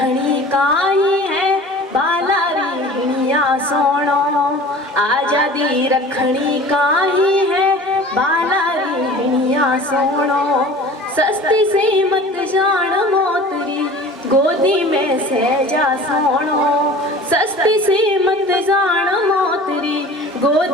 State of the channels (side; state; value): both; normal; correlation 0.42